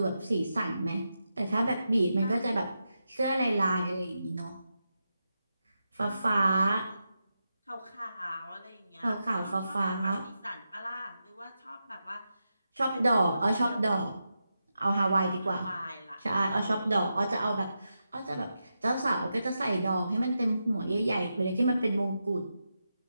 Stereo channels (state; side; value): inverted; both; correlation -0.88